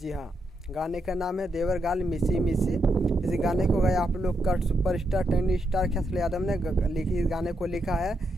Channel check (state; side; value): normal; both; correlation 0.81